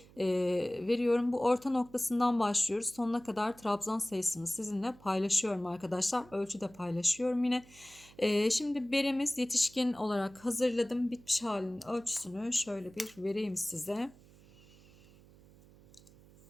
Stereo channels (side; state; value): right; noise; hum, 24 dB below the sound